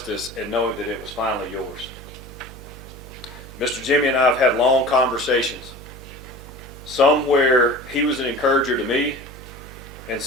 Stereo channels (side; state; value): right; noise; hum, 16 dB below the sound